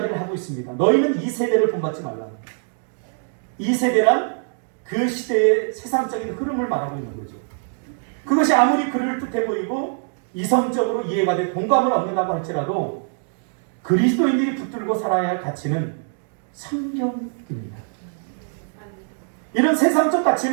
하고 있습니다. 너희는 이 세대를 본받지 말라. 이 세대란 그 시대의 세상적인 흐름을 말하고 있는 거죠. 그것이 아무리 그를 뜻해 보이고 이성적으로 이해가 돼 공감을 얻는다고 할지라도 그리스도인들이 붙들고 살아야 할 가치는 성경입니다. 이런 세상적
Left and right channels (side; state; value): left; silent; 64 dB below the other